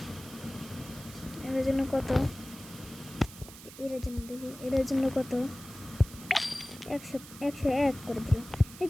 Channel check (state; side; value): noise; right; hiss, 16 dB below the sound